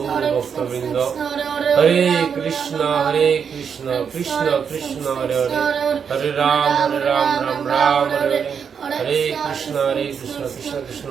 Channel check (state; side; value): quieter; left; 6.9 dB